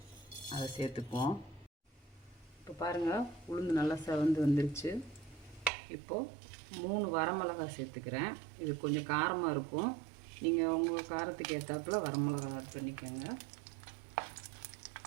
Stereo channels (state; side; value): drops out; left; at 5.7 s